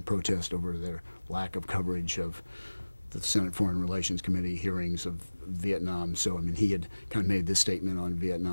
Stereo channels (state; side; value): inverted; both; correlation -1.00